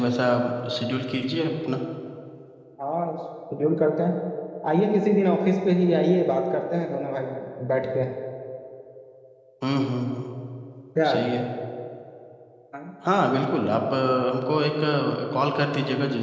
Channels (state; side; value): identical; both; correlation 1.00